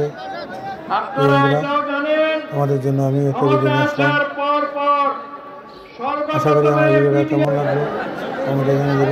আমাদের জন্য আমি একটা ভিডিও নিয়ে আসলাম। আশা করি আমার ভিডিওটা কেমন লাগবে কমেন্টে জানিয়ে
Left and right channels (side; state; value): both; identical; correlation 1.00